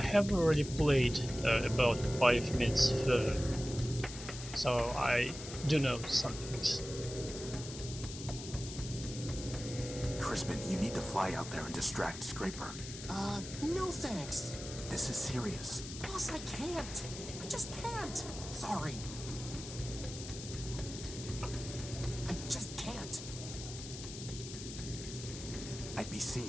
have already played about 5 minutes further, so I do know some things. Crispin, you need to fly out there and distract Scraper. No thanks. This is serious. Boss, I can't. I just can't. Sorry. I just can't. I'd be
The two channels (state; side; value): noise; left; hiss, 10 dB below the sound